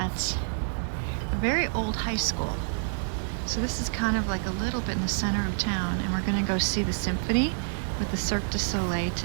a very old high school. So this is kind of like a little bit in the center of town, and we're gonna go see the symphony with the Cirque du Soleil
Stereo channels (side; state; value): left; silent; digital silence